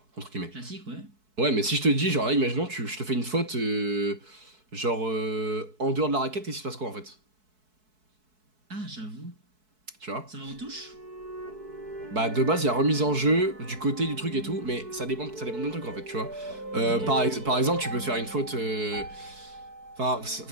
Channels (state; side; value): late; left; 4.6 ms